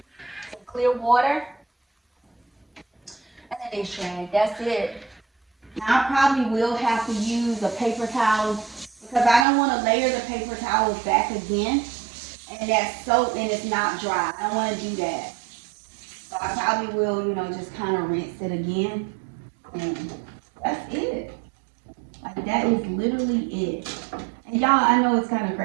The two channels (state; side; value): drops out; left; at 9.5 s